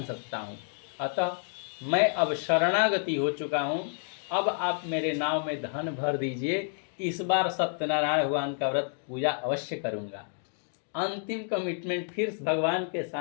सकता हूँ। अतः मैं अब शरणागति हो चुका हूँ, अब आप मेरे नाव में धन भर दीजिए, इस बार सत्यनारायण भगवान का व्रत पूजा अवश्य करूँगा। अंतिम कमिटमेंट फिर भगवान के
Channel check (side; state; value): right; silent; 58 dB below the other